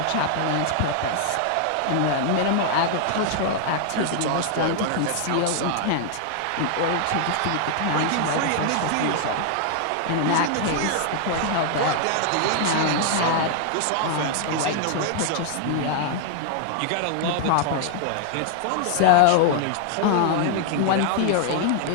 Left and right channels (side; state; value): both; different; correlation 0.00